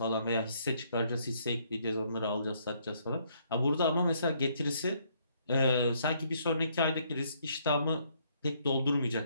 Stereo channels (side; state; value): both; inverted; correlation -0.69